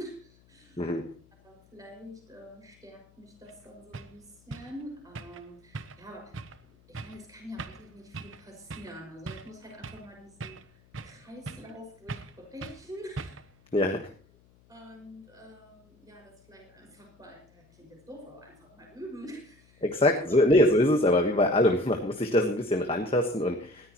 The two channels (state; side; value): noise; left; hum, 30 dB below the sound